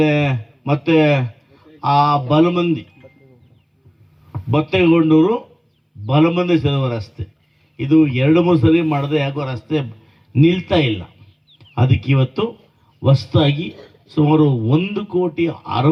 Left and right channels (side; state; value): both; identical; correlation 1.00